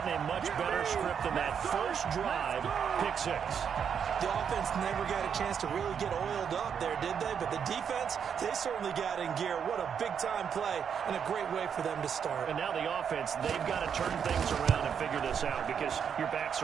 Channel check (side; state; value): left; quieter; 7.5 dB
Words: a much better script than that first drive, pick 6. The offense never got a chance to really get oiled up there, did they? But the defense, they certainly got in gear. What a big-time play and a great way for them to start. And now the offense, they've got to turn things around and figure this out because your backs